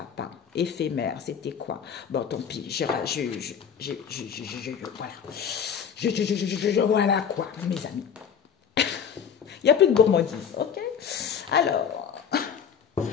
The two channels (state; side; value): quieter; right; 7.6 dB